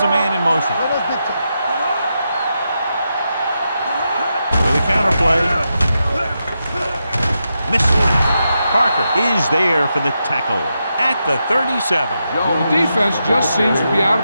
a man in motion. With a counterplay. Misses. Parker is there for the tackle at the 37. The defense just seems to be out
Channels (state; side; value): inverted; both; correlation -0.86